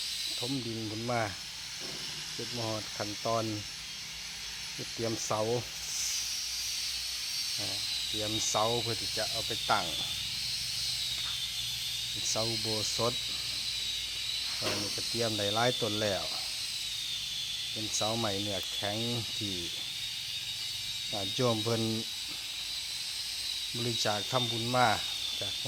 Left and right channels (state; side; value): identical; both; correlation 1.00